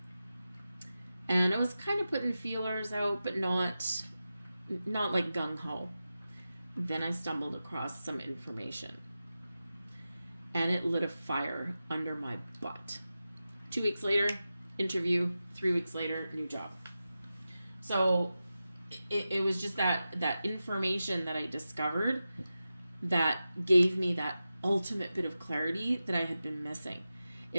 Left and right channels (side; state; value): both; inverted; correlation -0.93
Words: And I was kind of putting feelers out, but not like gung-ho. Then I stumbled across some information. And it lit a fire under my butt. 2 weeks later, interview. 3 weeks later, new job. So it was just that information that I discovered that gave me that ultimate bit of clarity that I had been missing.